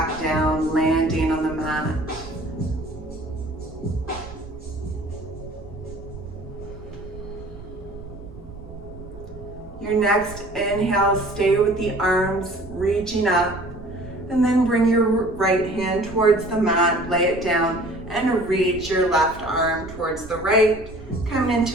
down, landing on the mat. Your next inhale, stay with the arms reaching up, and then bring your right hand towards the mat, lay it down, and reach your left arm towards the right, coming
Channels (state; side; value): noise; right; rumble, 16 dB below the sound